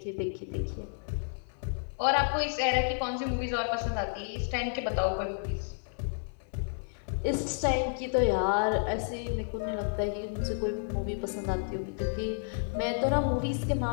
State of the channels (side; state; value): right; silent; digital silence